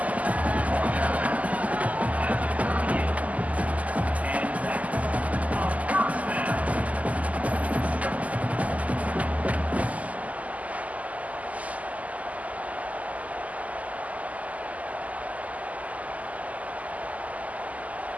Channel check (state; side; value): late; left; 0.074 ms